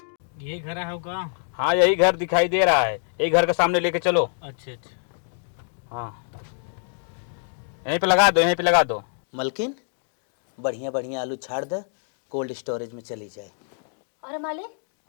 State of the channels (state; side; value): silent; right; digital silence